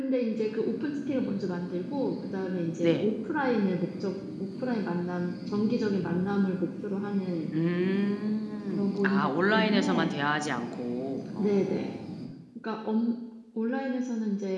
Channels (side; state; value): both; identical; correlation 1.00